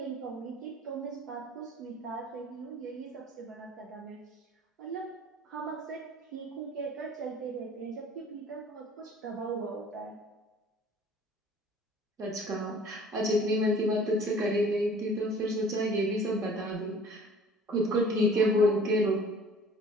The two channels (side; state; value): both; normal; correlation 0.50